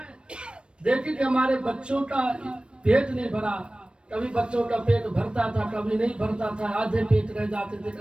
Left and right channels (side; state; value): left; late; 0.057 ms